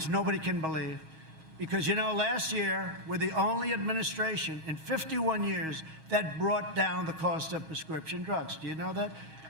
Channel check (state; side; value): late; left; 6.3 ms